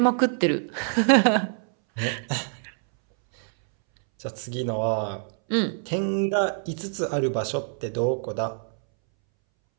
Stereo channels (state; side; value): silent; left; 62 dB below the other